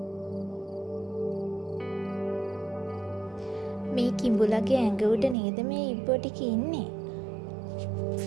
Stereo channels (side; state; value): left; drops out; at 5.4 s